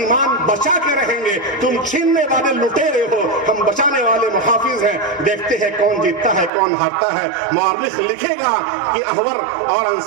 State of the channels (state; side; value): drops out; left; at 6.5 s